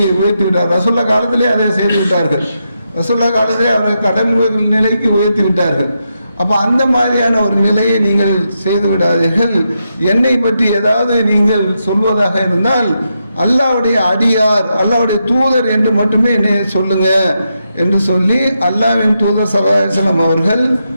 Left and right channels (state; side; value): inverted; both; correlation -0.84